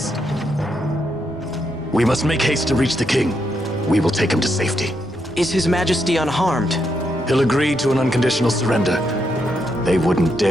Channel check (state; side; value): normal; both; correlation 0.80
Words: We must make haste to reach the king. We will take him to safety. Is His Majesty unharmed? He'll agree to an unconditional surrender. They wouldn't